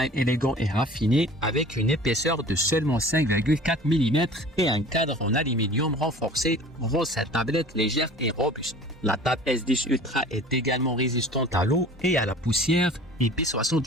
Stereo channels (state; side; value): normal; both; correlation 0.44